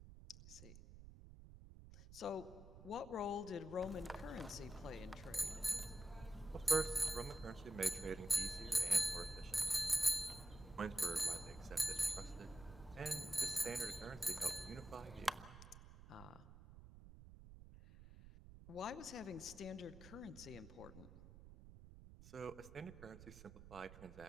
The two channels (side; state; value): right; noise; rumble, 16 dB below the sound